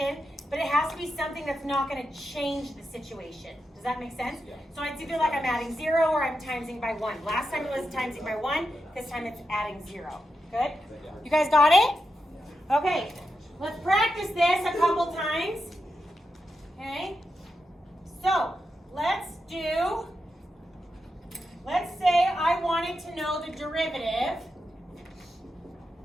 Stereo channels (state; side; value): normal; both; correlation 0.87